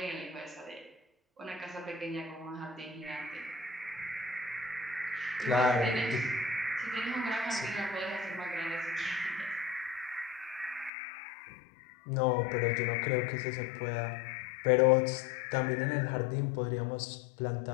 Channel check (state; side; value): drops out; right; at 10.9 s